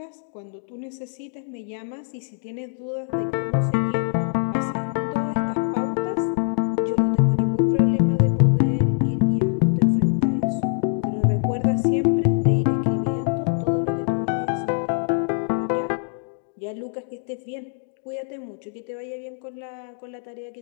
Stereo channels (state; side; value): silent; right; 63 dB below the other